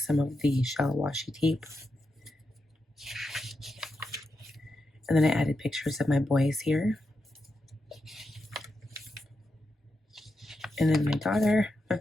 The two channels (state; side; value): normal; both; correlation 0.87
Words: of the shell washi tape. And then I added pictures of my boys here. And then my daughter,